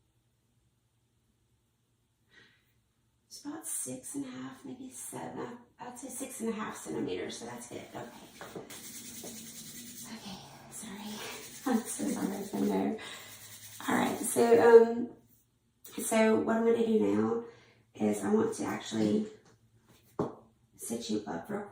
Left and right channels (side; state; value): both; identical; correlation 1.00